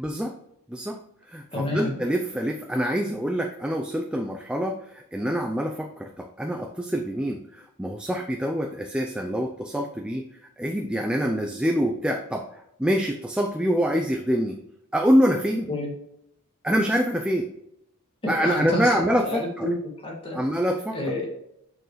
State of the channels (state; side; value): normal; both; correlation 0.80